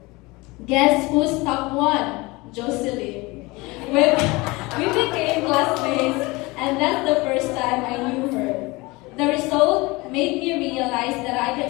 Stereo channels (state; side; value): quieter; right; 23.4 dB